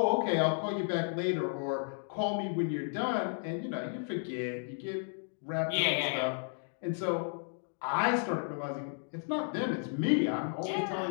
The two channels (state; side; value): silent; right; 56 dB below the other